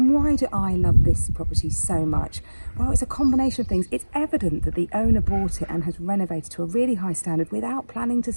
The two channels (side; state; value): both; inverted; correlation -1.00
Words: why do I love this property so much? Well, it's a combination of things. It's evident that the owner bought it and has renovated to a really high standard without planning to